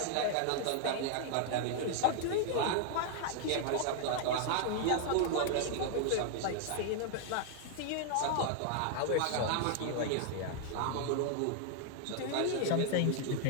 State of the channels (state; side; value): different; both; correlation 0.00